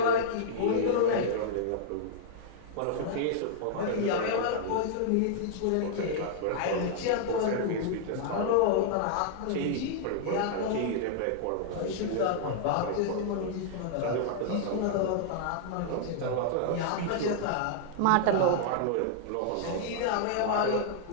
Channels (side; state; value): both; different; correlation -0.01